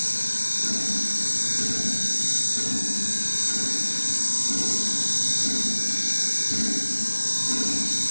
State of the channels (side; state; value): both; inverted; correlation -1.00